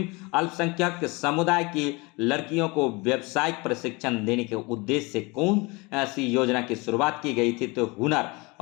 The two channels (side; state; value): right; quieter; 26.2 dB